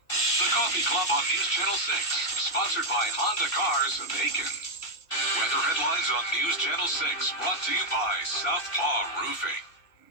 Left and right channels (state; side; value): late; right; 2.6 ms